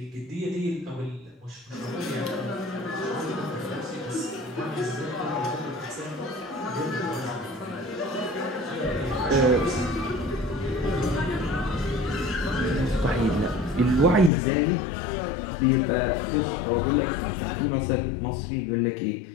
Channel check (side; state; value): right; drops out; at 14.3 s